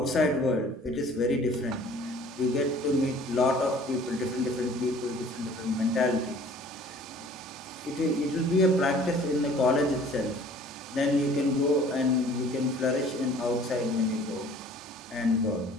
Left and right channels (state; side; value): normal; both; correlation 0.51